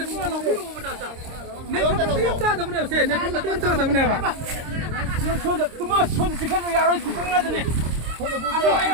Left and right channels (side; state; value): left; late; 26 ms